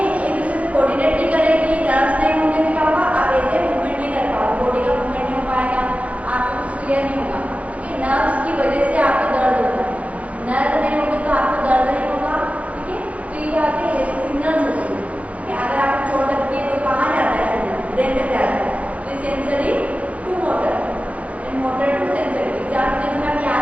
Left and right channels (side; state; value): left; late; 0.066 ms